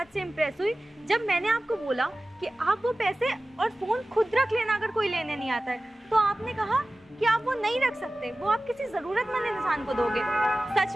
से इम्प्रेस हुई जब मैंने आपको बोला कि आप वो पैसे और फ़ोन खुद रख लेना अगर कोई लेने नहीं आता है। तो आपने कहा कि आप वो नहीं रख सकते, वो आप किसी ज़रूरतमंद इंसान को दोगे। सच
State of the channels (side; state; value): both; normal; correlation 0.97